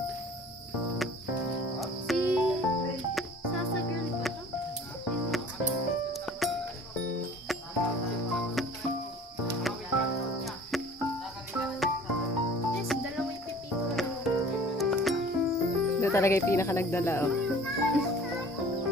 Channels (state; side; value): normal; both; correlation 0.47